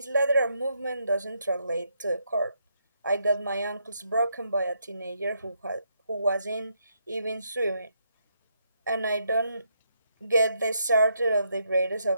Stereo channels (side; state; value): both; inverted; correlation -0.78